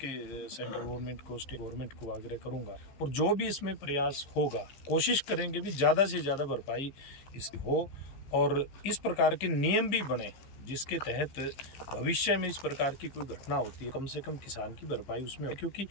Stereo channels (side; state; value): right; late; 15 ms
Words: सेंट्रल गवर्नमेंट को, स्टेट गवर्नमेंट को आग्रह करूंगा, और जो भी इसमें प्रयास होगा कोशिश करेंगे भी ज़्यादा से ज़्यादा भरपाई इसकी हो, और इस प्रकार के नियम भी बने जिसके तहत भविष्य में इस प्रकार की कोई घटना होती है, कम से कम किसान की भरपाई उसमें हो। क्योंकि